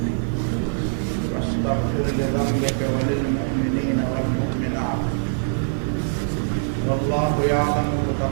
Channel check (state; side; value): silent; left; digital silence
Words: वस्तग़फिर लिज़ंबिका व लिलमुअमिनीना वल मुअमिनात वल्लाहु यअलमु